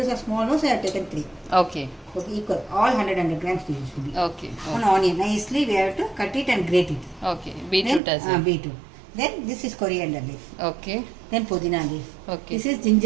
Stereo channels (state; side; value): drops out; left; at 8.0 s